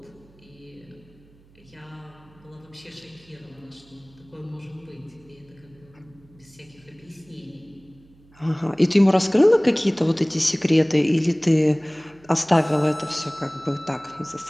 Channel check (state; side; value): noise; right; hum, 28 dB below the sound